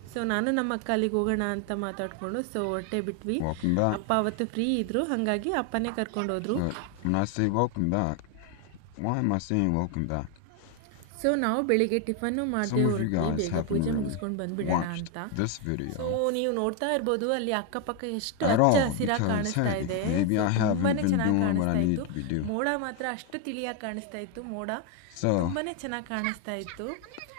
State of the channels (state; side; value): different; both; correlation 0.01